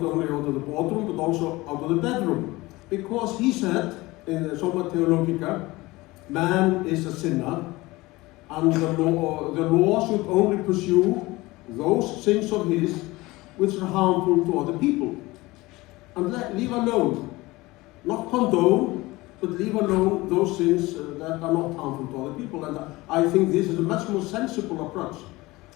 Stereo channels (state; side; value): quieter; right; 20.7 dB